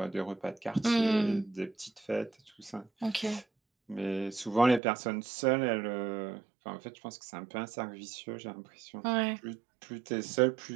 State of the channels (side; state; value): left; drops out; at 4.8 s